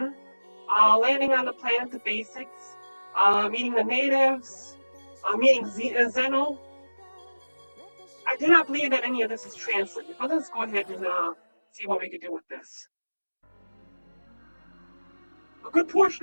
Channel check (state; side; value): inverted; both; correlation -1.00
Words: landing on the planet, the basics, meeting the natives, meeting Zeno. I do not believe that any of this is translated, but let's go ahead and see what we can do with this. A good